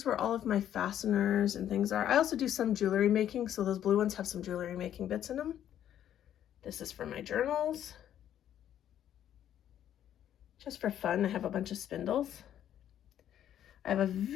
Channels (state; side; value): quieter; right; 10.6 dB